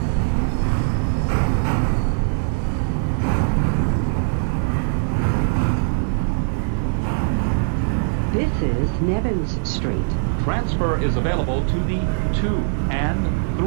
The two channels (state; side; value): silent; left; digital silence